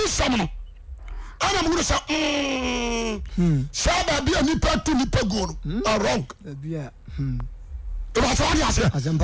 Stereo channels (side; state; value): both; identical; correlation 1.00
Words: some. I'm going to say, Saba be a nipa to nipa go. Wrong. Yeah. It was what I said. The